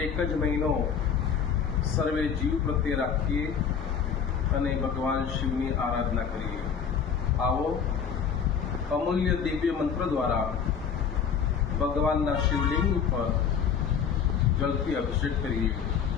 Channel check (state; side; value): quieter; right; 7.0 dB